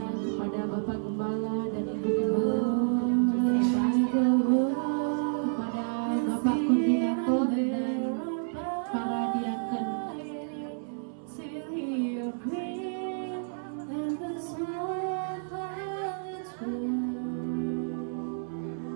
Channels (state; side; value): silent; left; 58 dB below the other